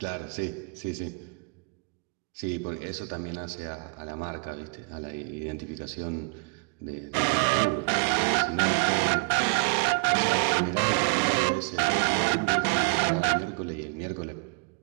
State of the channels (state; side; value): quieter; left; 35.3 dB